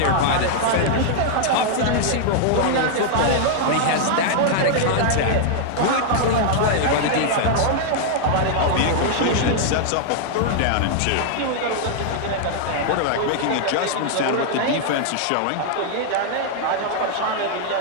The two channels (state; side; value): different; both; correlation -0.01